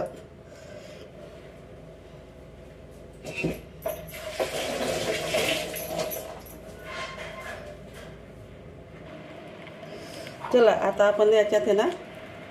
चला आता आपण याच्यात आहे ना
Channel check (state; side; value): identical; both; correlation 1.00